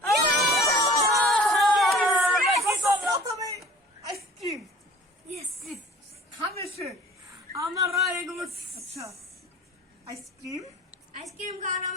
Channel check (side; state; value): both; normal; correlation 0.47